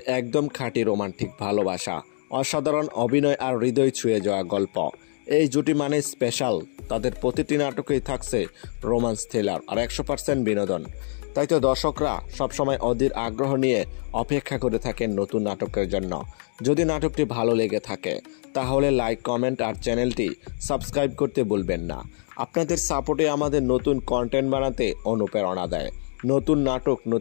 একদম খাঁটি রোমান্টিক ভালোবাসা, অসাধারণ অভিনয় আর হৃদয় ছুঁয়ে যাওয়া গল্প। এই জুটি মানে স্পেশাল। তাদের প্রতিটি নাটকেই থাকছে রোমান্স থ্রিলার আর 100% বিনোদন। তাই তো দর্শকরা সবসময় অধীর আগ্রহ নিয়ে অপেক্ষা করে থাকেন নতুন নাটকের জন্য। যদি নাটকটি ভালো লেগে থাকে তাহলে লাইক, কমেন্ট আর চ্যানেলটি সাবস্ক্রাইব করতে ভুলবেন না। আপনাদের সাপোর্টে আমাদের নতুন কন্টেন্ট বানাতে অনুপ্রেরণা দেয়। নতুন নাটক,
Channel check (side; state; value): right; silent; digital silence